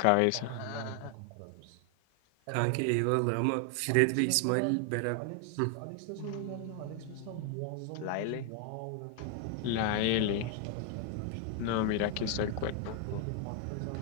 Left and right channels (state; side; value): different; both; correlation 0.00